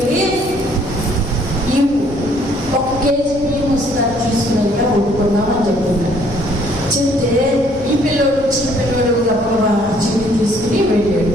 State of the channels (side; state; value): left; noise; rumble, 18 dB below the sound